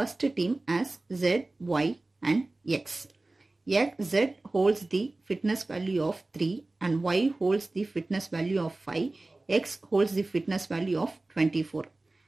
team has Z, Y and X. Z holds the fitness value of 3 and Y holds the fitness value of 5. X holds the fitness value of 24.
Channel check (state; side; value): quieter; left; 3.0 dB